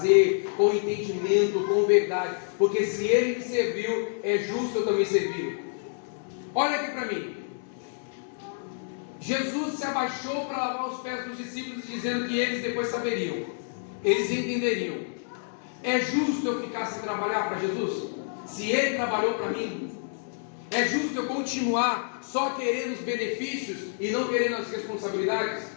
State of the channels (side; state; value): right; silent; 59 dB below the other